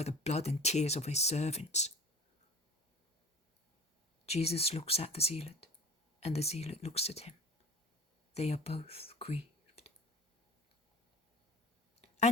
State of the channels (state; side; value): normal; both; correlation 0.40